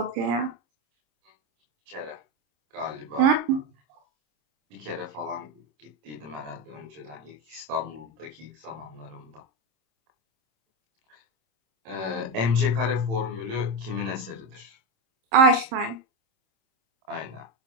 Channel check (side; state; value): left; late; 27 ms